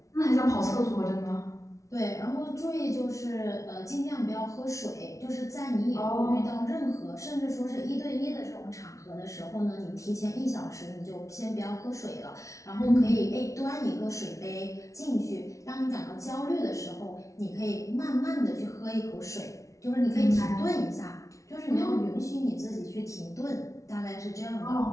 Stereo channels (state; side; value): late; right; 0.15 ms